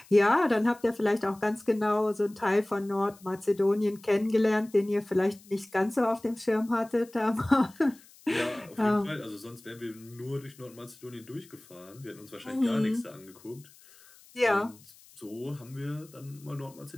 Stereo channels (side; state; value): left; noise; hiss, 25 dB below the sound